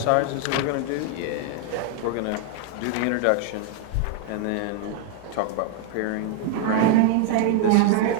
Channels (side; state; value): both; different; correlation 0.00